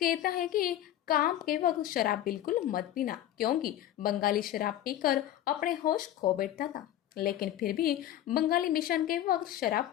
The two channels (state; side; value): quieter; right; 12.4 dB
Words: है कि काम के वक्त शराब बिल्कुल मत पीना, क्योंकि बंगाली शराब पीकर अपने होश खो बैठता था। लेकिन फिर भी बंगाली मिशन के वक्त शराब